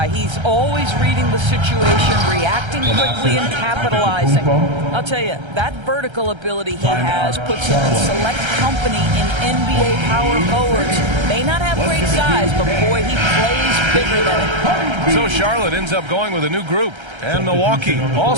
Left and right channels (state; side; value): late; left; 1.3 ms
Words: He's always reading the situation, reacting quickly and capitalizing. I'll tell you, that vertical ability he has puts him in select company in NBA power forwards. May not have great size, but boy, he plays bigger than it. So Charlotte ends up going with a new group. And Milwaukee